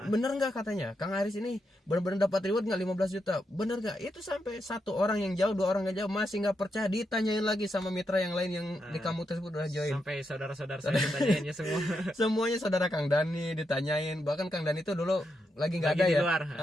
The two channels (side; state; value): both; normal; correlation 0.83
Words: bener nggak katanya Kang Aris ini benar-benar dapat reward nggak 15 juta, bener nggak? Itu sampai 1 orang yang jauh, 2 orang yang jauh masih nggak percaya, ditanyain lagi sama mitra yang lain yang di kampung tersebut udah join. Sampai saudara-saudara saya ditanyainnya semua. Semuanya saudara Kang Dani ditanyain, bahkan Kang Dani itu dulu lagi nggak ada ya.